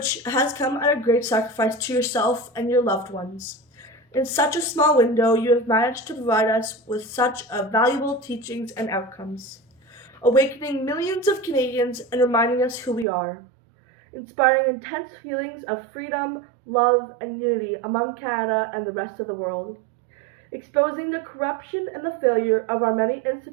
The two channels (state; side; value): drops out; left; at 13.1 s